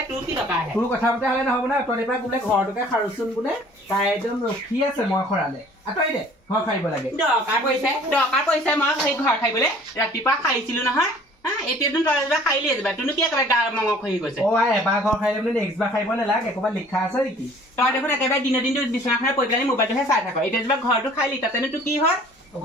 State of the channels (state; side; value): normal; both; correlation 0.52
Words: তোৰ কি টকা আহে তোৰ কথা মতে হ'লে নহ'ব না তই পৰা বোলে ঘৰটোকে সাৰোচোন বোলে তাই একদম ৰখি আছে মই খৰালে আঁতৰি দে ঘৰ সাৰিব লাগে দৰকাৰ পৰিছে মই সেই ঘৰ সাৰিবলৈ ৰাতিপুৱা সাৰিছিলো নহয় এতিয়াতো তই এবাৰ সাৰিলিয়ে যাবা তোনো কি একেবাৰে গা মঙহ খহি গৈছে এবাৰ ঘৰ সাৰিলে বোলে নেক্সট বাৰ সাৰিব নালাগে ক'ৰবাত লিখা আছে নেকি তই দেখোন একেবাৰে দিনৰ দিনটো বিচনাখনে পৰি পেলাই মোবাইলটোহে চাই থাক এতিয়া যেনিবা ঘৰটো সাৰিলি তাতেনো তোৰ কি হয়